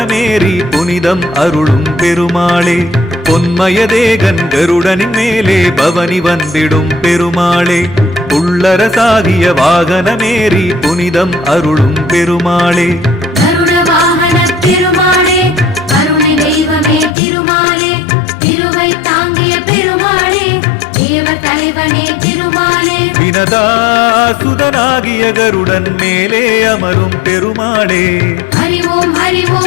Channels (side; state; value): right; drops out; at 17.2 s